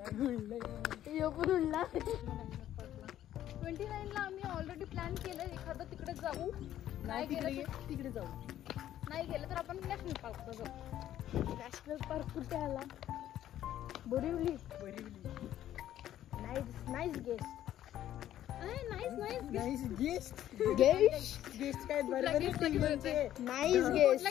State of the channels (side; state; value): right; quieter; 12.1 dB